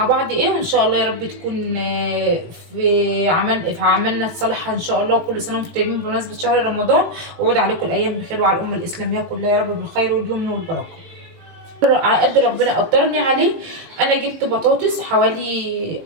بعض ايه، وان شاء الله يا رب تكون في عملنا صالحه ان شاء الله. وكل سنه وانتم طيبين بمناسبه شهر رمضان، وعود عليكم الايام بخير وعلى الامه الاسلاميه كلها يا رب بالخير واليمن والبركه على قد ربنا قدرني عليه. انا جبت بطاطس حوالي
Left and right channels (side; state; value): left; late; 18 ms